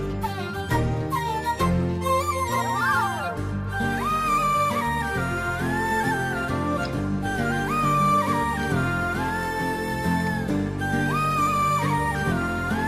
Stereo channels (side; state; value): both; identical; correlation 1.00